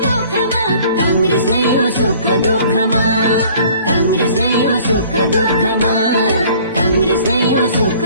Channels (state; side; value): inverted; both; correlation -0.53